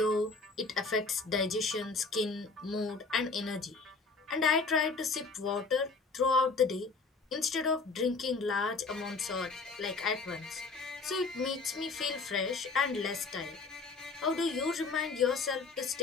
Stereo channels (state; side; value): quieter; right; 4.1 dB